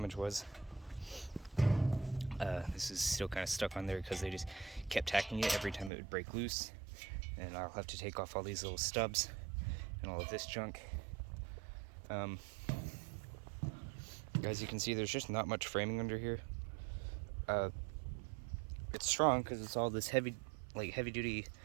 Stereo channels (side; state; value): left; drops out; at 5.9 s